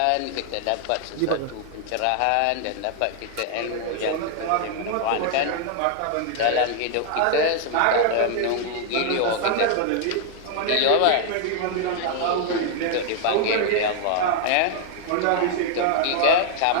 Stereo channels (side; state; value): both; different; correlation 0.00